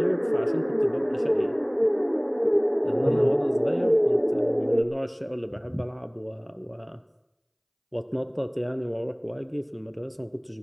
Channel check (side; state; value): both; identical; correlation 1.00